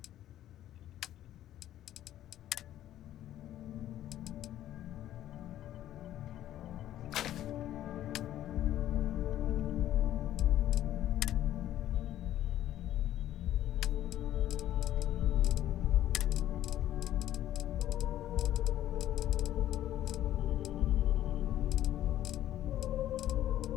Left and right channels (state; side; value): quieter; right; 12.6 dB